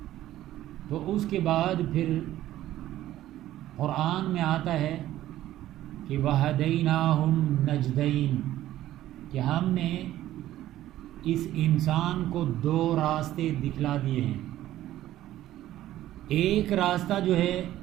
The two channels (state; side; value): quieter; left; 13.9 dB